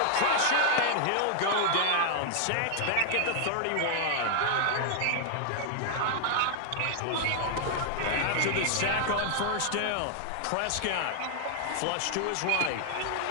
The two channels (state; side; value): different; both; correlation 0.00